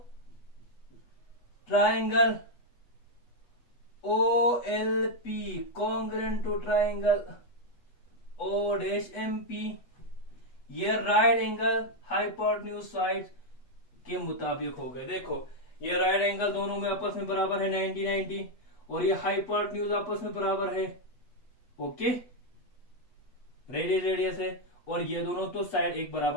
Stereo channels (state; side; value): late; right; 8.2 ms